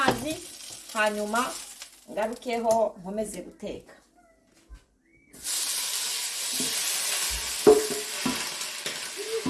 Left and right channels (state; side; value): identical; both; correlation 1.00